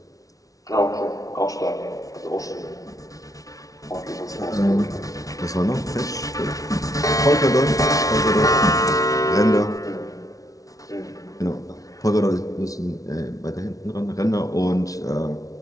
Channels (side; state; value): right; late; 0.17 ms